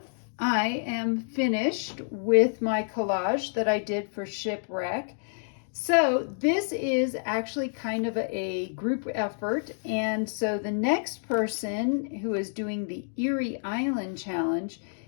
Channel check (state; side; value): silent; right; digital silence